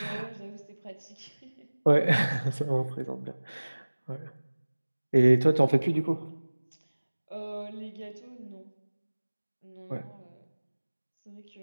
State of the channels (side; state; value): both; inverted; correlation -1.00